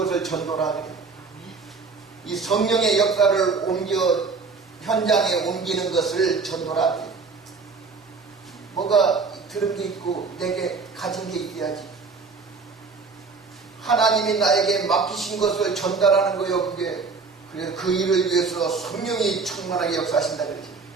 전도라 그래. 이 성령의 역사를 현장에 옮기는 것을 전도라 그래. 뭐가 들은 게 있고 내게 가진 게 있어야지. 하나님이 나에게 맡기신 것을 전달하는 거예요. 그래서 그 일을 위해서 성령이 충만하게 역사하신다 그러지.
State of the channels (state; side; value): quieter; left; 4.6 dB